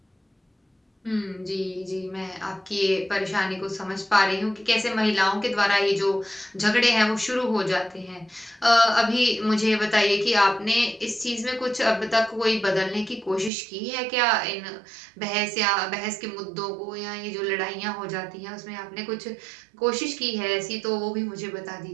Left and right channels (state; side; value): drops out; left; at 13.5 s